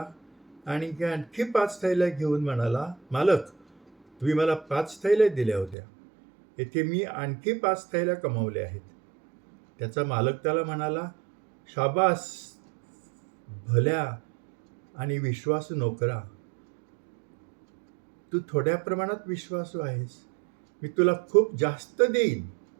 आणि आणखी 5 थैल्या घेऊन म्हणाला, मालक, तुम्ही मला 5 थैल्या दिल्या होत्या, येथे मी आणखी 5 थैल्या कमावल्या आहेत. त्याचा मालक त्याला म्हणाला, शाबास भल्या आणि विश्वासू नोकरा, तू थोड्या प्रमाणात विश्वासू आहेस, मी तुला खूप जास्त देईन,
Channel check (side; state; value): left; drops out; at 5.8 s